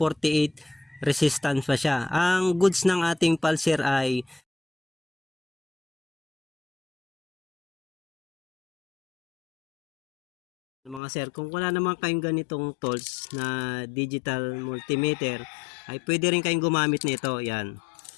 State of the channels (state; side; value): drops out; right; at 11.0 s